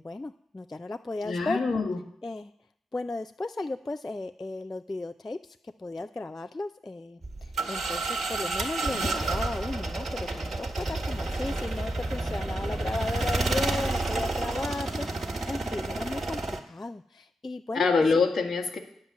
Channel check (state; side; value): normal; both; correlation 0.85